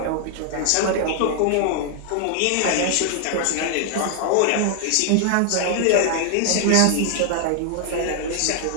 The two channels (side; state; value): both; different; correlation 0.00